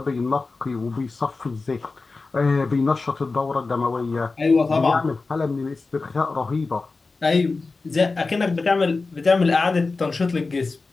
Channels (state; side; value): quieter; right; 3.9 dB